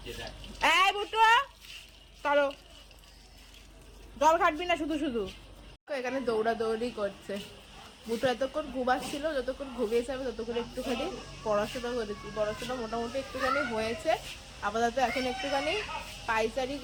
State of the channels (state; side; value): identical; both; correlation 1.00